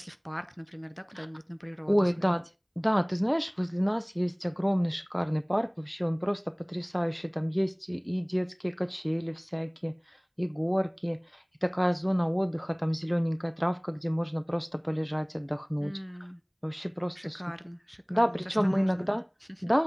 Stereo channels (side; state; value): both; identical; correlation 1.00